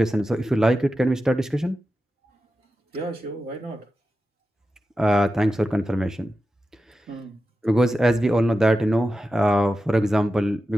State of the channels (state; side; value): normal; both; correlation 0.92